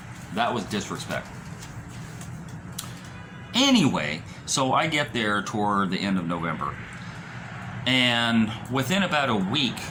That was disrespect. Anyway, so I get there toward the end of November. And within about a week,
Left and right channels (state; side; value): identical; both; correlation 1.00